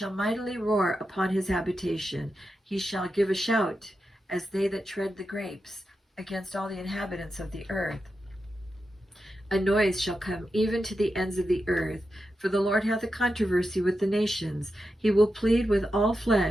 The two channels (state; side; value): normal; both; correlation 0.89